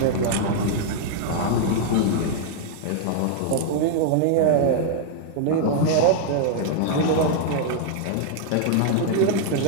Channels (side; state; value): both; different; correlation -0.01